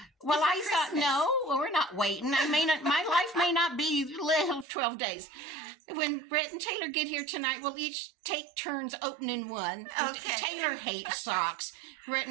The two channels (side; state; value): left; drops out; at 4.7 s